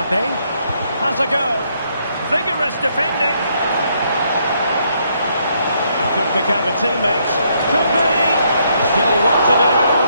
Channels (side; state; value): both; inverted; correlation -0.73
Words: has a go. Vigorous defending. Could pick out a teammate. Could be. Still what to do.